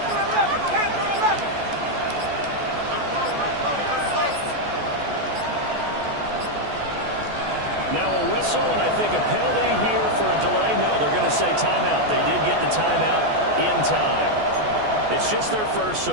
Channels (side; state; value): left; late; 14 ms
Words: 11. Panther 11. Now a whistle, and I think a penalty here for a delay. No, they're going to say timeout. They did get the timeout in time. It's just their first,